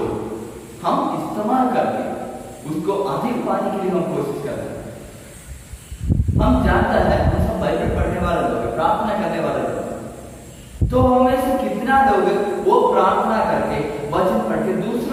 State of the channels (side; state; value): both; identical; correlation 1.00